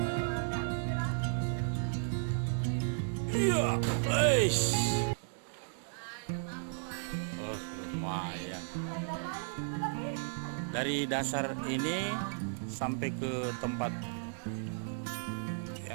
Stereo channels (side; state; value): left; silent; digital silence